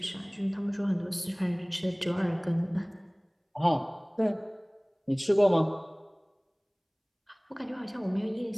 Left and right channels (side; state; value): both; identical; correlation 1.00